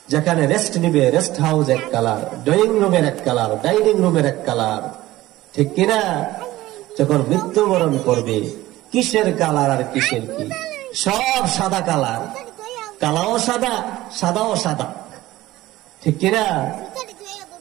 যেখানে রেস্ট নিবে রেস্ট হাউস এক কালার, ড্রয়িং রুমের এক কালার, ডাইনিং রুমের এক কালার, ঠিক কিনা? যখন মৃত্যুবরণ করবে, কিসের কালার আর কিসের কি? সব সাদা কালার, কালাও সাদা, সাদাও সাদা, ঠিক কিনা?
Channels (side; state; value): left; quieter; 16.8 dB